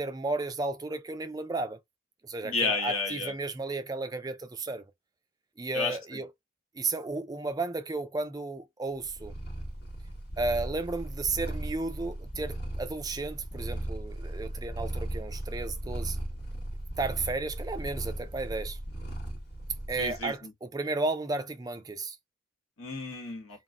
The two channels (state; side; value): normal; both; correlation 0.52